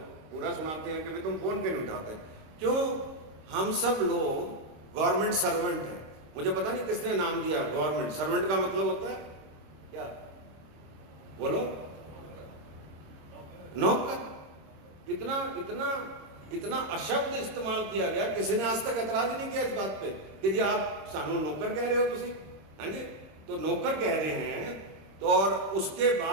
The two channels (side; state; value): left; late; 26 ms